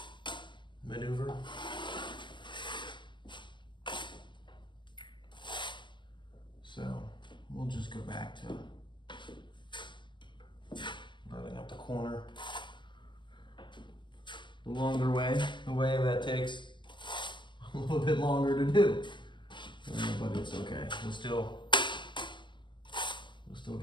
maneuver. So we'll just go back to running up the corner the longer way, the way that takes a little bit longer to do. But it's okay. We'll still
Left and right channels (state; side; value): late; right; 0.22 ms